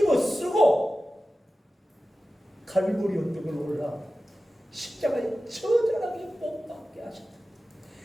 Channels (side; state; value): both; normal; correlation 0.95